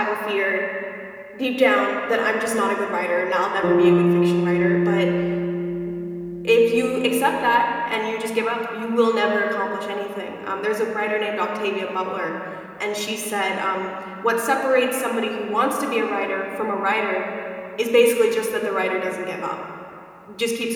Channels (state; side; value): identical; both; correlation 1.00